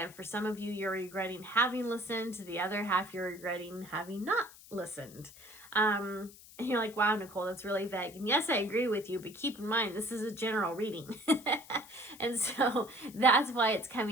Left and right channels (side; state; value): left; noise; hiss, 20 dB below the sound